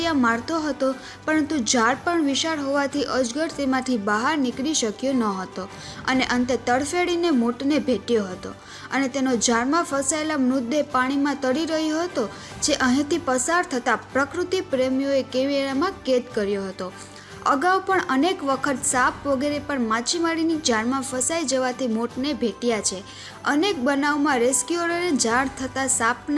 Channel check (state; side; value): identical; both; correlation 1.00